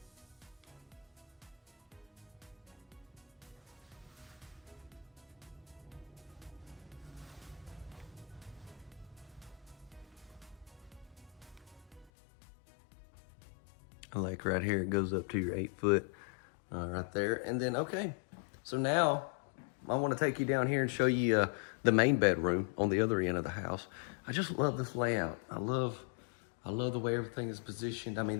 Like right here, it goes up to your 8-foot right there. And then, okay, so now I want to take you down here and show you the main bedroom on the other end of the house. I just love this layout. I love the way everything is positioned. I mean,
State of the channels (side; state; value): right; drops out; at 12.1 s